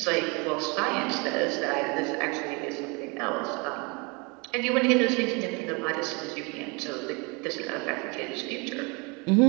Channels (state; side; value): quieter; left; 29.8 dB